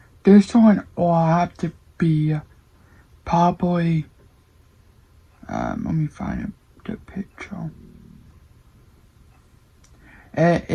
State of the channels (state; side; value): identical; both; correlation 1.00